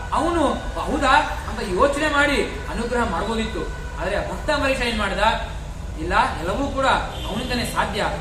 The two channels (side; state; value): both; identical; correlation 1.00